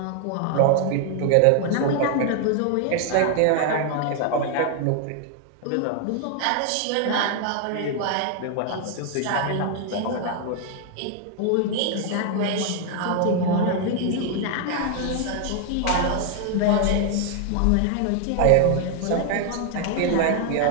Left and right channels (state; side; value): different; both; correlation 0.00